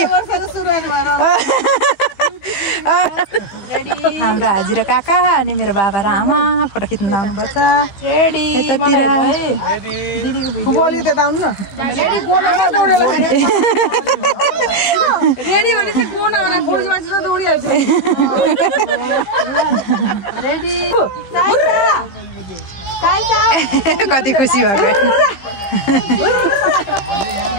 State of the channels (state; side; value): late; right; 15 ms